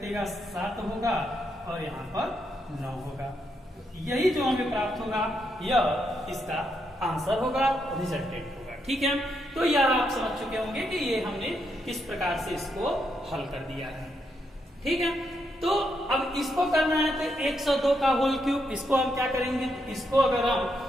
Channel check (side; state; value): both; normal; correlation 0.80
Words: 7 होगा और यहाँ पर 9 होगा। यही जो हमें प्राप्त होगा यह इसका आंसर होगा, रिजल्टेंट होगा। ठीक है, तो यह आप समझ चुके होंगे कि ये हमने किस प्रकार से इसको हल कर दिया है। ठीक है, तो अब इसको करना है तो 102 का होल क्यूब, इसको हम क्या करेंगे, इसको अगर हम